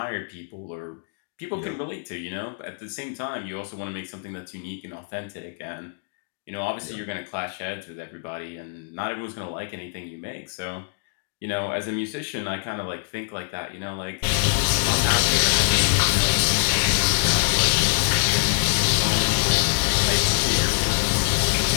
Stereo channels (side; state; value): right; silent; digital silence